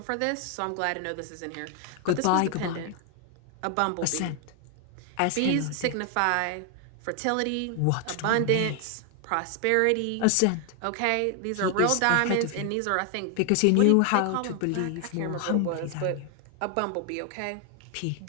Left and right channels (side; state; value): both; different; correlation 0.00